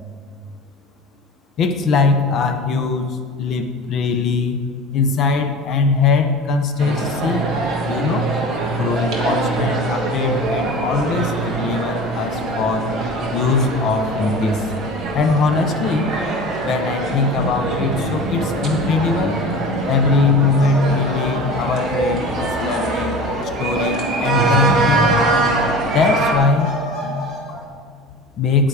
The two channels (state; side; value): normal; both; correlation 0.36